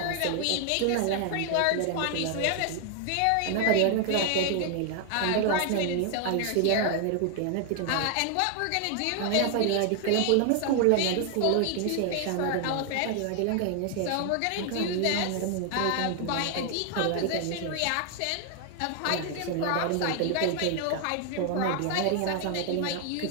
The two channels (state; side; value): different; both; correlation 0.00